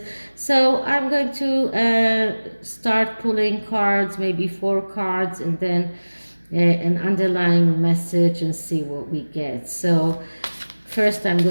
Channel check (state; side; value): inverted; both; correlation -1.00